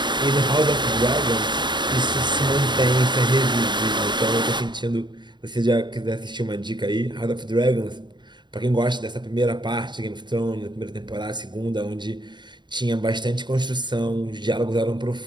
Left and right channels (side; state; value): left; late; 0.22 ms